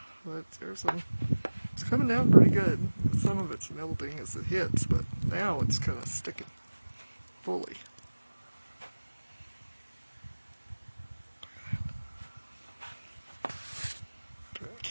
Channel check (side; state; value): both; inverted; correlation -1.00